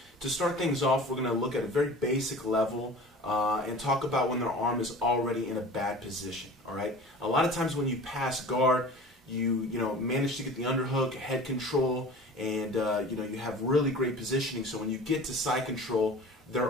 To start things off, we're going to look at a very basic level and talk about when their arm is already in a bad position, all right? A lot of times when you pass guard, you manage to get the underhook, head control, and you have really great positioning. So when you get to side control,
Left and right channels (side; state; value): both; normal; correlation 0.40